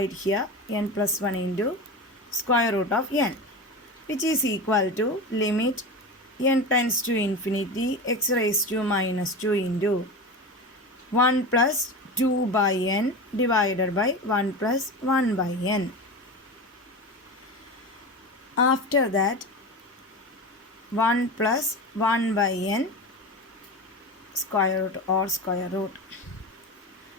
here, n plus 1 into square root of n, which is equal to limit n tends to infinity x raised to minus 2 into 1 plus 2 by n divided by 1 plus 1 by n. After that, 1 plus 1 by n square root,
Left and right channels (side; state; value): both; normal; correlation 0.26